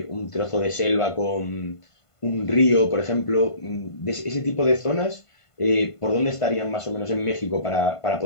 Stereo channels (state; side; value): late; right; 1.5 ms